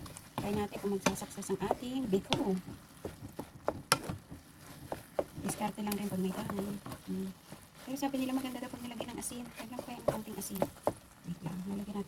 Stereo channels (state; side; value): identical; both; correlation 1.00